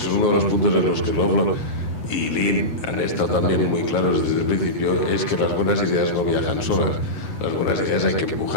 uno de los puntos en los que Lovelock y Lynn han estado también muy claros desde el principio, es que las buenas ideas no viajan solas. Las buenas ideas hay que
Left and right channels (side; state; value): right; late; 8.0 ms